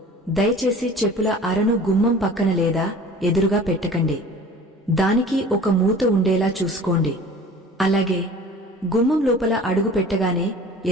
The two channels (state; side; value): normal; both; correlation 0.44